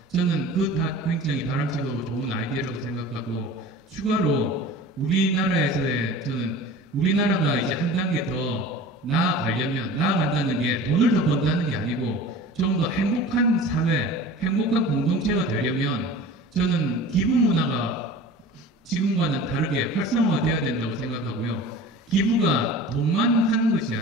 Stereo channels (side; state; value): both; normal; correlation 0.39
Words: 저는 그 다 굉장히 바람직하고 좋은 아이디어라고 생각하고, 추가로 우리나라에서의, 저는 우리나라가 이제 한 단계 더 나아간다는 게 돈을 더 번다는 게 아니고 좀 더 행복한 사회, 행복한 공동체가 되려면 저는 기부 문화가 지금과는 다르게 활성화되어야 된다고 생각하고요. 기부가 돈만 하는 것이